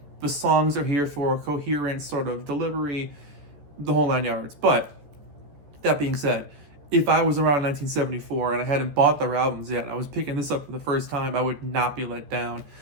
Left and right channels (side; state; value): left; late; 14 ms